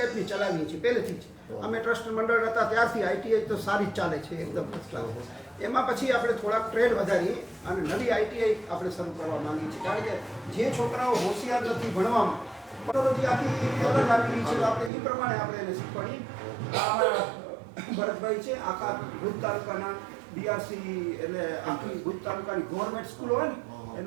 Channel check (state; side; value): drops out; left; at 14.9 s